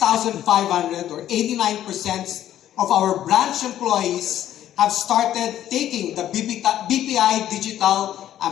or 89% of our branch employees have started taking the BPI Digital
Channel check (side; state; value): right; quieter; 11.9 dB